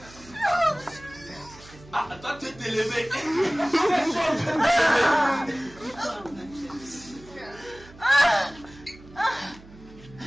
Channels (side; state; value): right; noise; hum, 21 dB below the sound